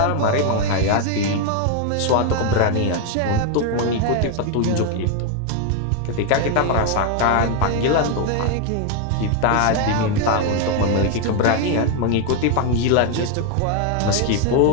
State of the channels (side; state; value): both; different; correlation 0.01